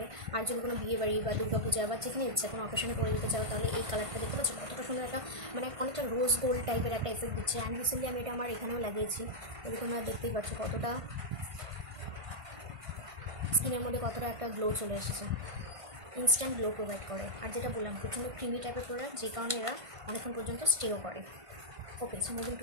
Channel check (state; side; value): late; left; 1.5 ms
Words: আর যদি কোনো বিয়ে বাড়ি বা দুর্গাপূজা বা যেখানে ইচ্ছা কোনো অকেশনে পরে যেতে চাও, তাহলে এই কালারটা দেখতে পাচ্ছ কতটা সুন্দর, একটা মানে অনেকটা রোজ গোল্ড টাইপের একটা এফেক্ট দিচ্ছে। অ্যান্ড রিসেন্টলি আমি এটা আমার এখানেও লাগিয়েছি, এটা তোমরা দেখতেই পাচ্ছ কতটা স্কিনের মধ্যে কতটা একটা গ্লো চলে এসেছে, ইনস্ট্যান্ট গ্লো প্রোভাইড করে। আর যেটা বললাম প্রচণ্ড ক্রিমি টাইপের প্রোডাক্ট, যে কারণে এরা অনেকক্ষণ পর্যন্ত স্টেও করে। Okay, so moving